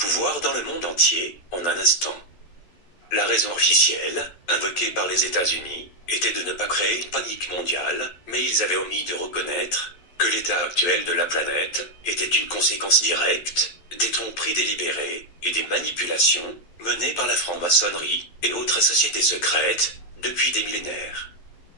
dans le monde entier en un instant. La raison officielle, invoquée par les États-Unis, était de ne pas créer une panique mondiale, mais ils avaient omis de reconnaître que l'état actuel de la planète était une conséquence directe des tromperies délibérées et des manipulations menées par la franc-maçonnerie et autres sociétés secrètes depuis des millénaires.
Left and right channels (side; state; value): right; late; 11 ms